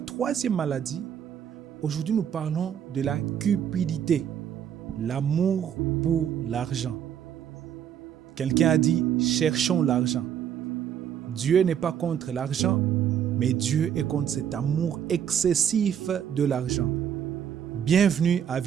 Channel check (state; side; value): quieter; left; 9.1 dB